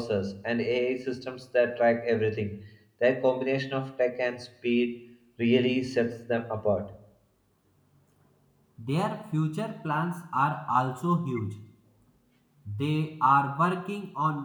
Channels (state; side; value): identical; both; correlation 1.00